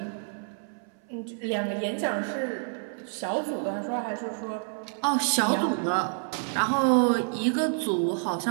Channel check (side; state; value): left; silent; 59 dB below the other